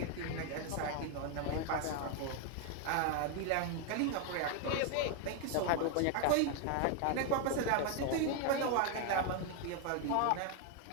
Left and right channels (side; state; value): both; different; correlation 0.01